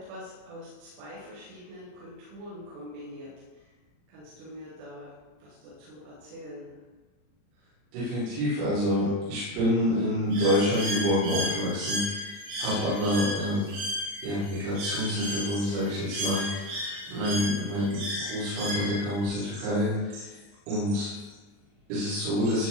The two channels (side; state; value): left; late; 40 ms